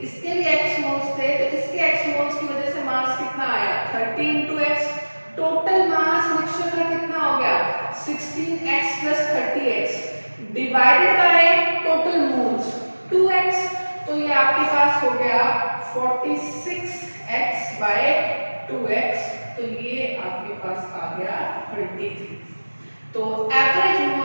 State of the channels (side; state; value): both; inverted; correlation -1.00